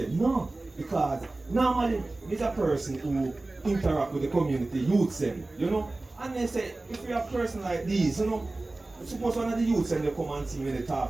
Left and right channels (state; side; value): quieter; left; 3.0 dB